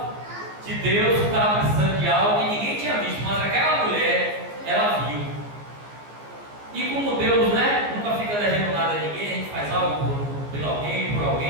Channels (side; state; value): left; late; 14 ms